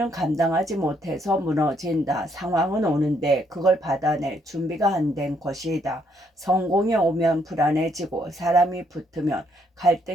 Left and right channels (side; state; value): both; normal; correlation 0.71